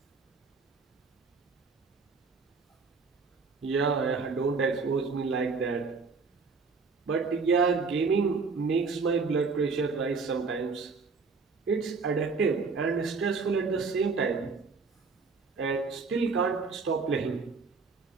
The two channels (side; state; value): left; quieter; 4.7 dB